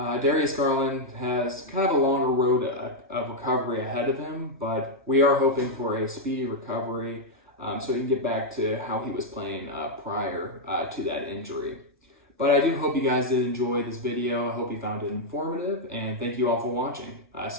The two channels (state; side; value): normal; both; correlation -0.02